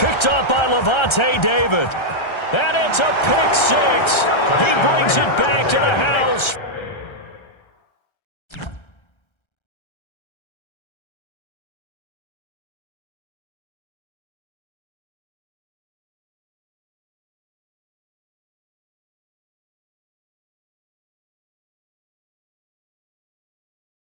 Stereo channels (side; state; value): right; late; 1.3 ms